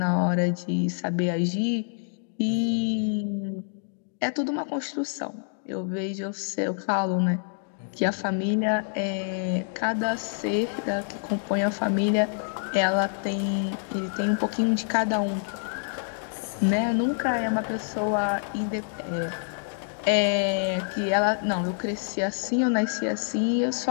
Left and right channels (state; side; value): silent; right; digital silence